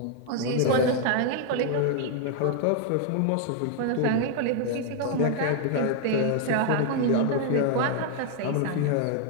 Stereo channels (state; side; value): different; both; correlation 0.00